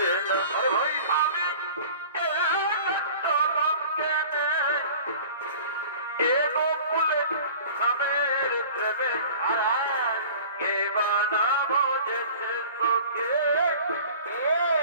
না ভাই আমি গোকুলে স্বামীর প্রেমে হারায় কে বানা বোঝেছে তোকে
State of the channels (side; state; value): both; inverted; correlation -0.43